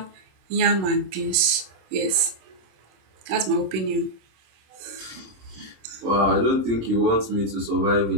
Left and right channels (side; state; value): left; late; 26 ms